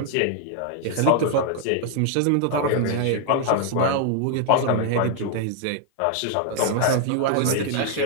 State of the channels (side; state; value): both; different; correlation 0.00